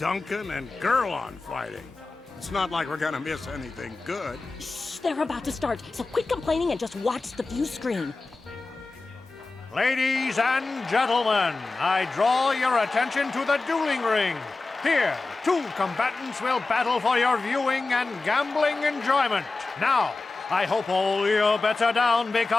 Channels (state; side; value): quieter; right; 3.6 dB